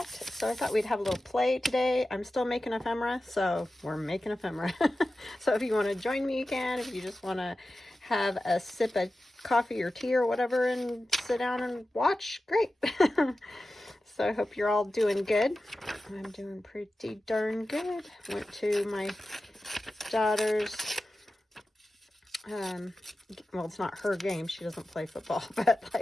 So I thought we'd have a little play today. I'm still making ephemera, so we're making ephemera. So if you want to join me, you can. If you just want to have a sip of coffee or tea or whatever and sit down and watch, great. So I hope you're all doing good. I'm doing pretty darn good. Went to my daughter's, well, it's not her game. She doesn't play football, but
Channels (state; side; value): normal; both; correlation 0.94